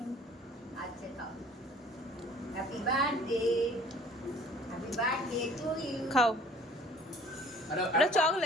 আচ্ছা খাও। Happy birthday, happy birthday to you. খাও, আরে ওটা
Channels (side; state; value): both; normal; correlation 0.52